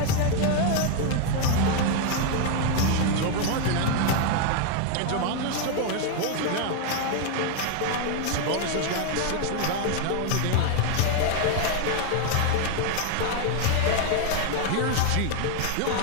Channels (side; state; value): both; different; correlation 0.01